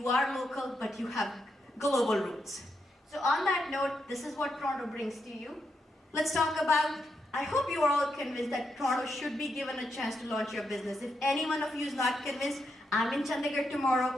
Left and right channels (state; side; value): normal; both; correlation 0.82